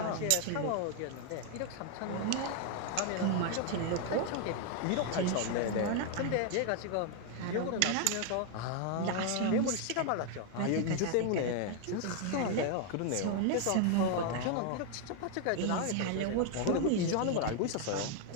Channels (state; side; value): different; both; correlation 0.01